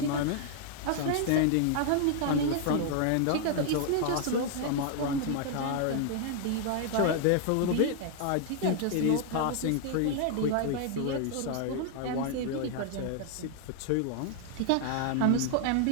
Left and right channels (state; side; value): different; both; correlation 0.00